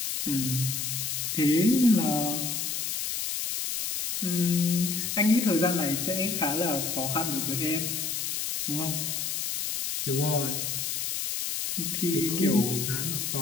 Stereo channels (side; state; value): left; noise; hiss, 2 dB below the sound